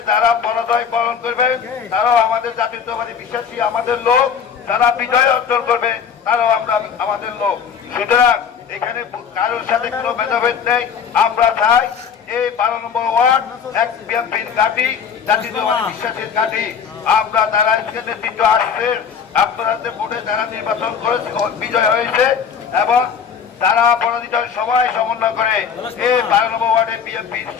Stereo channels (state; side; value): quieter; right; 7.1 dB